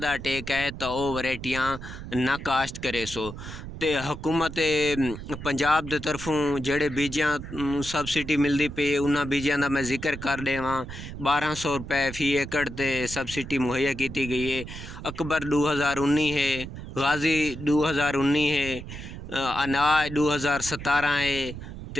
अटैक है तो वह वैरायटियां ना काश्त करे सो। ते हुकूमत पंजाब दे तरफों जेड़े बीजां सबसिडी मिलती पई उन्हां बीजां का मैं जिक्र कर देवां। 1200 रुपये फी एकड़ ते सबसिडी मुहैया की गई है। अकबर 2019 है, गाजी 2019 है, अनाज 2017 है,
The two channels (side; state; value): right; noise; rumble, 10 dB below the sound